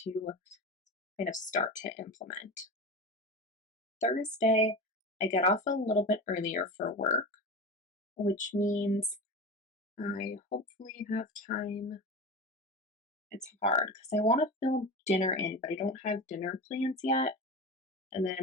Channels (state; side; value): normal; both; correlation 0.27